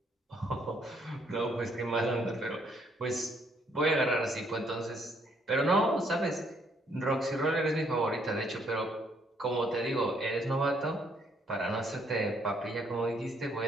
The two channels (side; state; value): both; normal; correlation 0.69